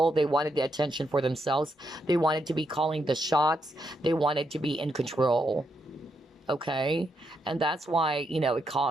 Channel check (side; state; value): both; normal; correlation 0.80